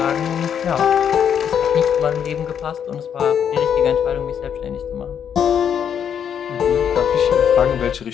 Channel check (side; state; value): right; quieter; 8.3 dB